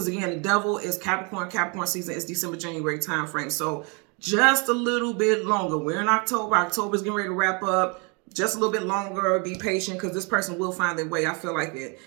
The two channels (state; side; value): quieter; left; 32.7 dB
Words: again, the devil is Capricorn. Capricorn season is December, January time frame. So just a little bit longer. We're in October. October's getting ready to wrap up. Just a little bit longer. Be patient, because this person will find their way. I feel like it.